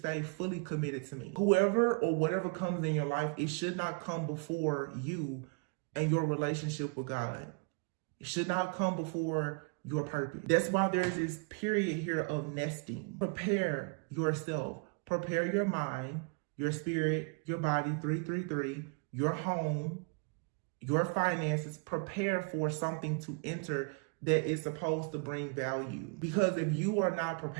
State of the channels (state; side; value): quieter; left; 36.2 dB